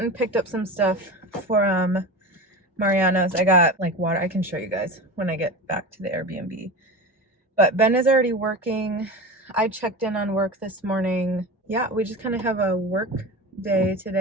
and picked up some stuff for Mariano's. I got like water. I can show you guys when I get back to the Airbnb. But Ben is already working. I checked in on work this morning. Yeah, we just kind of have a work day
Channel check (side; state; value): both; normal; correlation 0.28